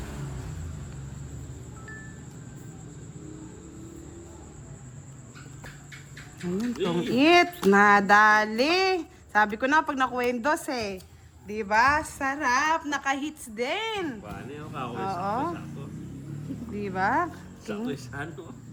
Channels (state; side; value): identical; both; correlation 1.00